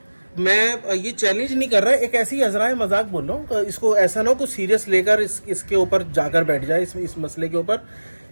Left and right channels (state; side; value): inverted; both; correlation -1.00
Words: मैं ये चैलेंज नहीं कर रहा, एक ऐसी अजराए मजाक बोल रहा हूँ। इसको ऐसा ना हो कुछ सीरियस लेकर इसके ऊपर जाकर बैठ जाए, इस मसले के ऊपर।